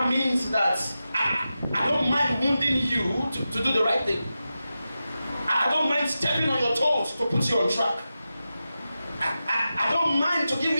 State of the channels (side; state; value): both; inverted; correlation -0.92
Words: means that I don't mind wounding you to do the right thing. I don't mind stepping on your toes to put you on track. I don't mind to give